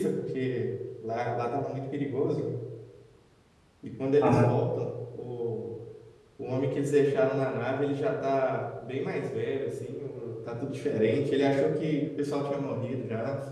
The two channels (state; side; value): identical; both; correlation 1.00